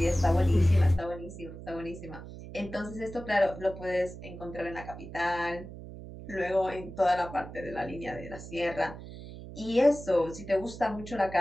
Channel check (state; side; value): noise; right; hum, 13 dB below the sound